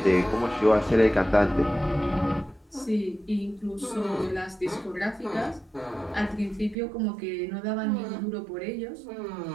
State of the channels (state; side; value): drops out; left; at 6.8 s